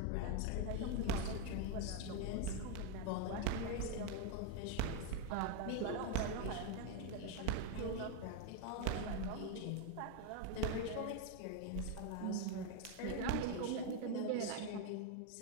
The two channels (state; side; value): different; both; correlation 0.01